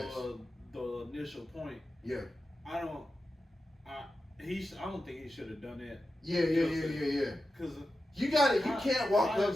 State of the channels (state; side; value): normal; both; correlation 0.91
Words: ass. the initial point, Yeah. I don't think he should have done that. Yeah. Because You got it. You Kai- can't walk Kai up